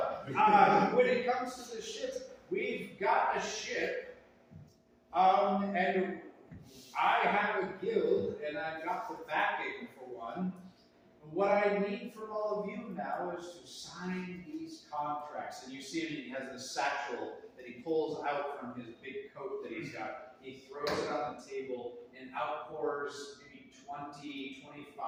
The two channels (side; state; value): both; identical; correlation 1.00